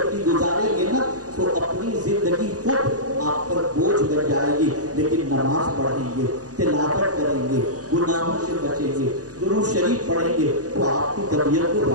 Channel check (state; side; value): late; left; 0.67 ms